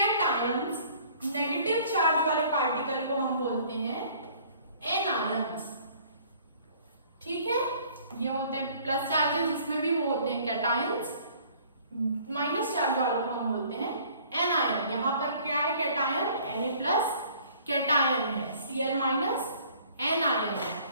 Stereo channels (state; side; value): inverted; both; correlation -0.55